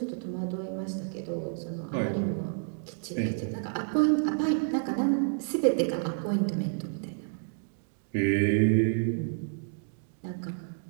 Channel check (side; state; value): left; silent; digital silence